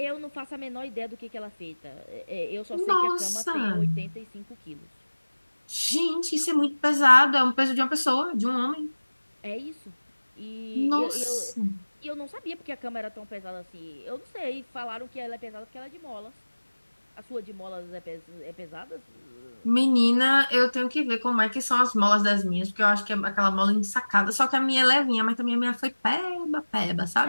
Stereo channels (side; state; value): both; inverted; correlation -1.00